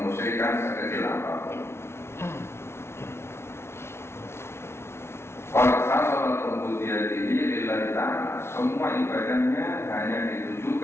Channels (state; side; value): late; right; 0.12 ms